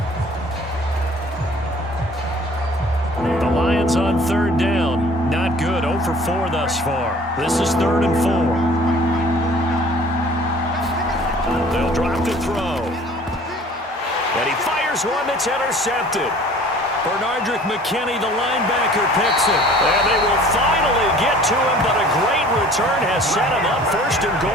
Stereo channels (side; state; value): both; normal; correlation 0.50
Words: On 3rd down, not good. 0 for 4 thus far. This is 3rd and 4. They'll drop to throw. And he fires one that's intercepted. Bernardrick McKinney, the linebacker, picks it. And they will finally get to him, but a great return has set him up 1st and